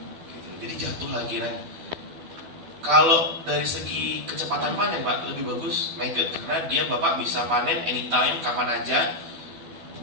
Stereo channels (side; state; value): left; late; 12 ms